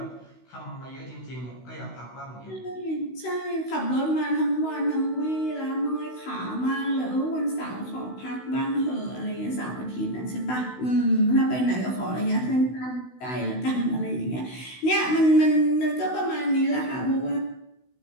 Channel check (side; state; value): right; late; 16 ms